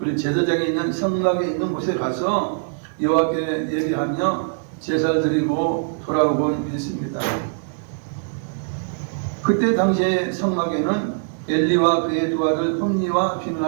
제사장이 있는 성막에 있는 곳에 가서 여호와께 얘기하며 제사를 드리고 돌아오곤 했습니다. 그때 당시에 성막에는 엘리와 그의 두 아들 홈니와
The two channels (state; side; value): silent; left; digital silence